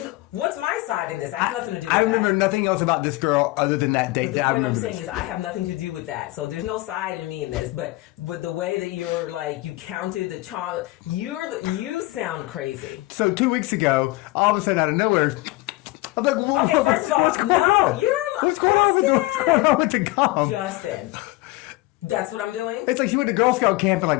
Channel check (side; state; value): right; quieter; 20.1 dB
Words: what's my side in this? I have nothing to do with that. I remember nothing else about this girl other than that date. But the point I'm saying is I have nothing to do with that. So there's no side in me in this. But with the way that you're like, you counted the chomp, you sound crazy. So 2 weeks ago, all of a sudden out of nowhere, I'm like, whoa, okay, first of all, what's going on with the gum? Justin. That's what I'm doing? It's like she went to Girl Scout camp and like,